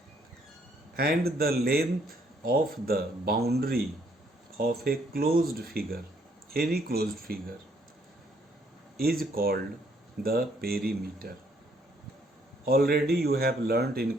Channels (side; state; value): both; normal; correlation 0.68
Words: And the length of the boundary of a closed figure, any closed figure, is called the perimeter. Already you have learnt in